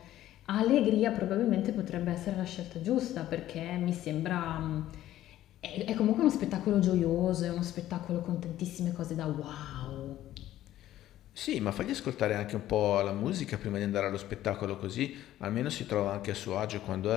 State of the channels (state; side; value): quieter; right; 13.5 dB